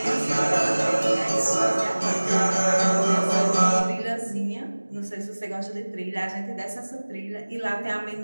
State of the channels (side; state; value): both; inverted; correlation -1.00